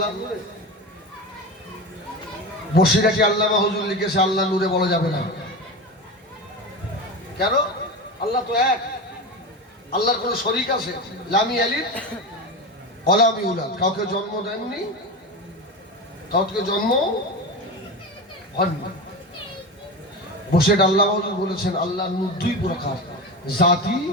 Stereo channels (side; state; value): both; normal; correlation 0.23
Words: নূরে বসিরাটি আল্লামা হুজুর লিখেছে আল্লাহ নূরে বলা যাবে না। কেন? আল্লাহ তো এক, আল্লাহর কোন শরীক আছে? লামি আলিদ অলামি উলাদ, কাউকে জন্ম দেননি, কাউকে জন্ম হননি। বসে আল্লাহ হুজুর বলেছেন আল্লাহ নূর দুই প্রকার, জাতি